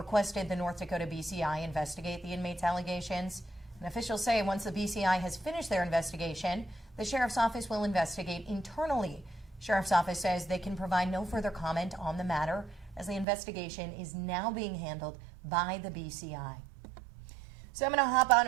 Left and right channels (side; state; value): left; drops out; at 13.2 s